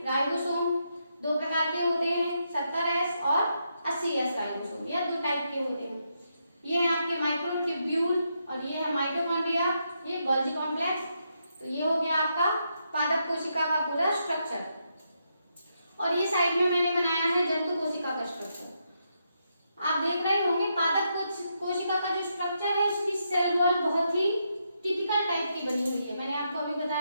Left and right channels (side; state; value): both; inverted; correlation -0.81